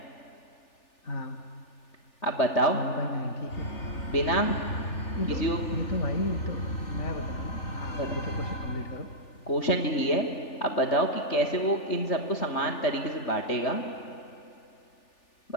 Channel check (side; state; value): right; late; 3.4 ms